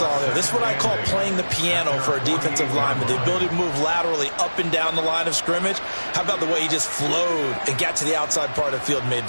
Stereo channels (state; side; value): inverted; both; correlation -1.00